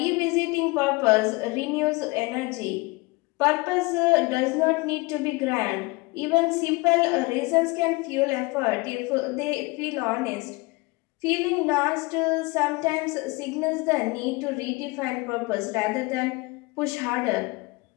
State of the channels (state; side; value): quieter; right; 25.2 dB